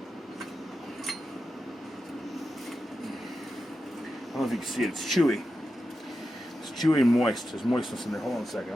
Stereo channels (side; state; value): both; normal; correlation 0.90